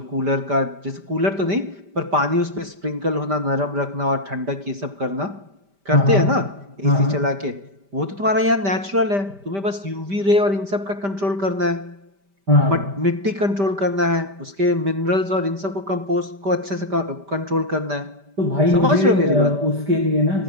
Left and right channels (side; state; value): left; late; 5.1 ms